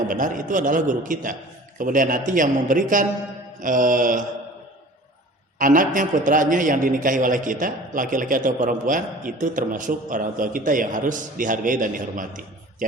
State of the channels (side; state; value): both; normal; correlation 0.44